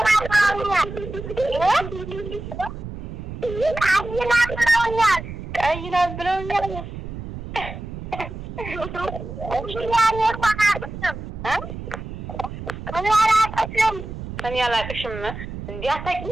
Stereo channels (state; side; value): noise; right; rumble, 9 dB below the sound